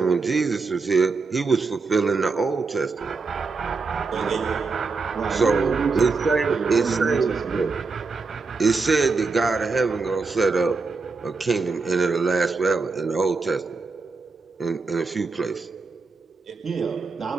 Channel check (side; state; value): left; quieter; 4.3 dB